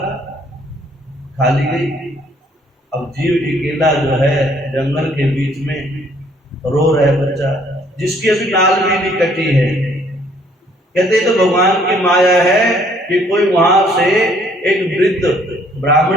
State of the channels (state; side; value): normal; both; correlation 0.63